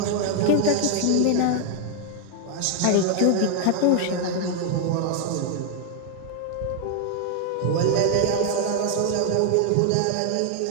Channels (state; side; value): different; both; correlation 0.00